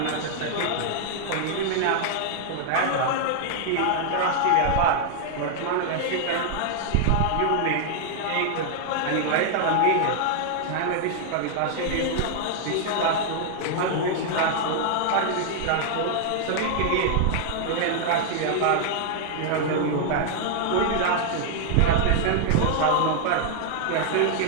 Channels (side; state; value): both; different; correlation 0.00